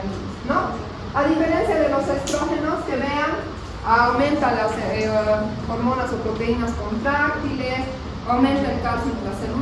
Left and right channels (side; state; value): both; identical; correlation 1.00